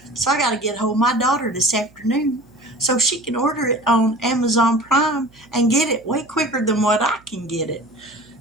So I got to get hold of my daughter this afternoon so she can order it on Amazon Prime and get it way quicker than what I can get it.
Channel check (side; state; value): right; noise; hum, 29 dB below the sound